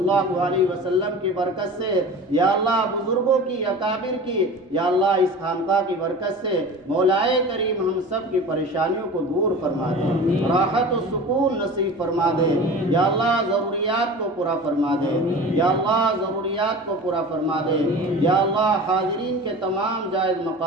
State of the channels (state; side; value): normal; both; correlation 0.36